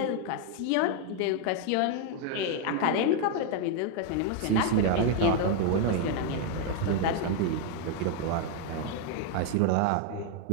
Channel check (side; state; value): both; different; correlation 0.00